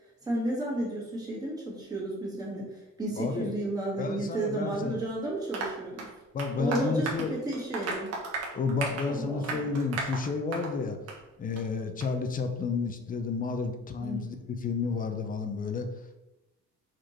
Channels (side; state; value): both; normal; correlation 0.49